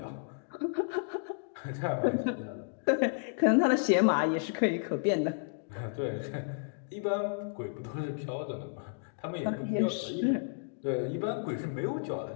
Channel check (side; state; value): right; silent; digital silence